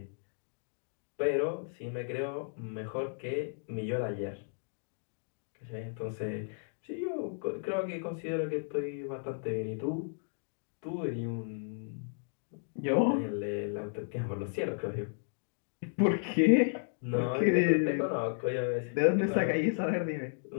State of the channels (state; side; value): silent; right; digital silence